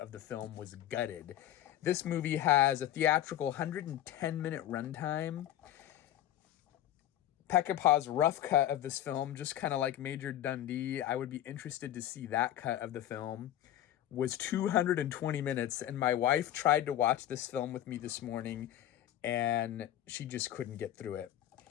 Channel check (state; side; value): quieter; right; 12.4 dB